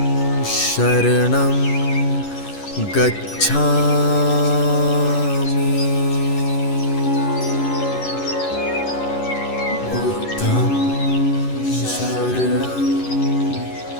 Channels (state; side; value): late; right; 11 ms